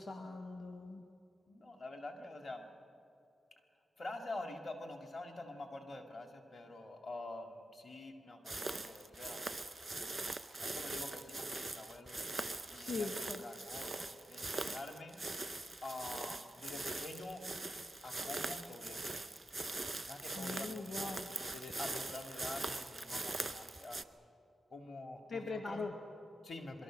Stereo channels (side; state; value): both; normal; correlation 0.86